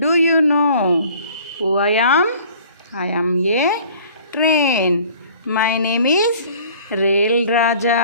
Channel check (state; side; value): inverted; both; correlation -0.51